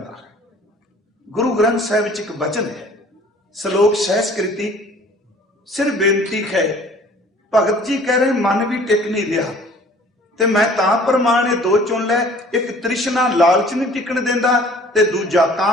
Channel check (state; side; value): normal; both; correlation 0.51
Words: गुरु ग्रंथ साहिब च एक वचन है, श्लोक सहस्कृति, सिर बेनती है। भगत जी कह रहे मन भी टिक नहीं रहा, ते मैं तां प्रमाण दो चुन लै, एक तृष्णा लालच नहीं टिकण देंदा ते दूजा